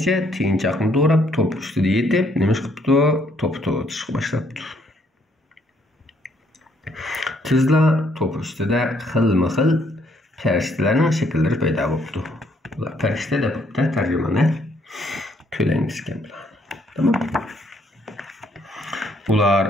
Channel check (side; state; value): both; normal; correlation 0.68